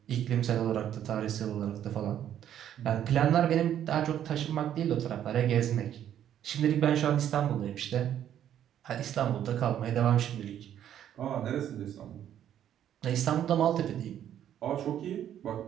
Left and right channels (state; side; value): quieter; left; 10.5 dB